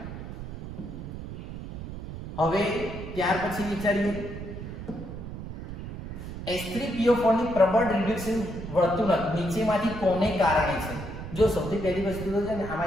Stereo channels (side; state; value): right; noise; rumble, 9 dB below the sound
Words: હવે ત્યાર પછી વિચારીએ H3PO4 ની પ્રબળ રિડક્શન વર્તણૂક નીચેમાંથી કોને કારણે છે? જો સૌથી પહેલી વસ્તુ તો છે ને